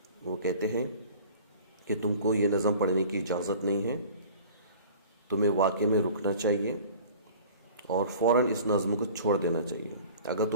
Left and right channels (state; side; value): inverted; both; correlation -0.45